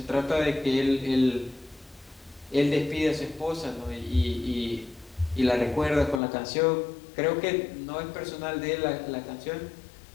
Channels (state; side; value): drops out; right; at 6.2 s